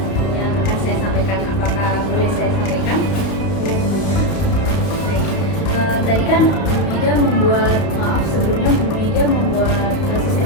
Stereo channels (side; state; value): right; late; 32 ms